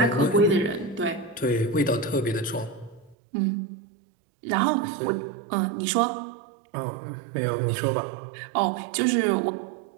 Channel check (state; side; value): drops out; left; at 3.2 s